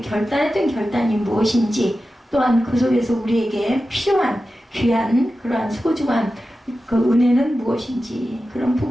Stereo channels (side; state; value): both; normal; correlation 0.93